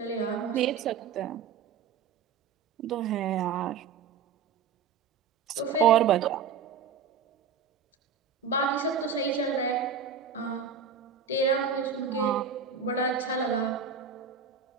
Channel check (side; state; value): left; quieter; 6.5 dB